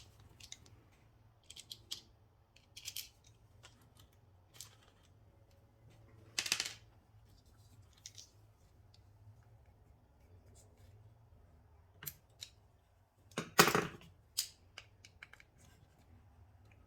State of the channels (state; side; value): identical; both; correlation 1.00